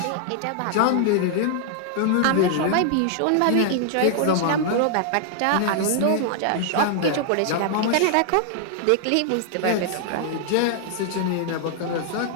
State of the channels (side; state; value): both; different; correlation 0.00